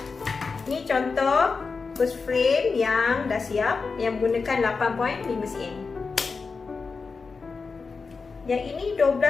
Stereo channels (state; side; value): quieter; right; 4.7 dB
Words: Ini contoh first frame yang dah siap, yang menggunakan 8.5 cm. Yang ini